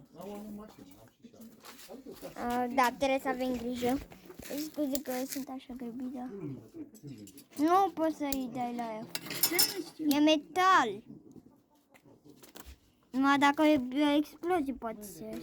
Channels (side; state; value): both; identical; correlation 1.00